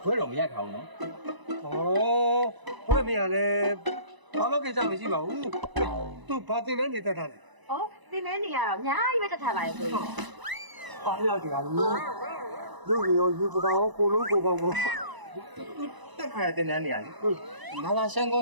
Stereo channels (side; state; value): left; late; 1.0 ms